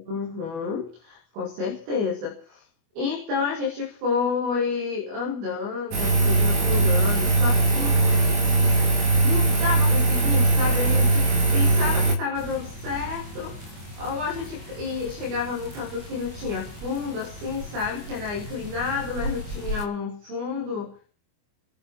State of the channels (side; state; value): left; late; 24 ms